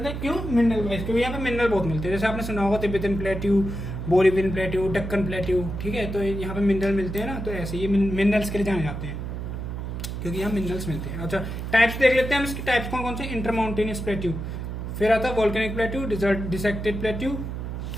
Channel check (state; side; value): noise; right; hum, 5 dB below the sound